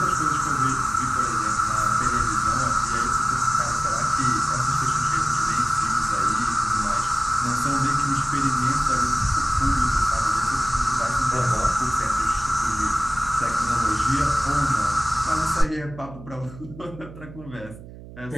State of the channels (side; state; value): right; noise; hum, 16 dB below the sound